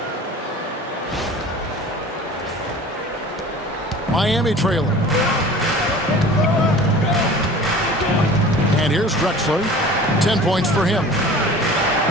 Miami trailing. And here's Drexler. 10 points for him.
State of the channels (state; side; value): normal; both; correlation 0.42